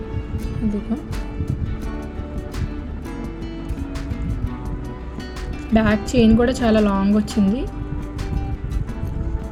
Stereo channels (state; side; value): identical; both; correlation 1.00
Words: ఇదిగో బ్యాక్ చైన్ కూడా చాలా లాంగ్ వచ్చింది.